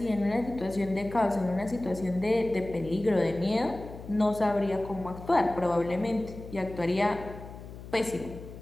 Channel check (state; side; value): noise; left; hum, 14 dB below the sound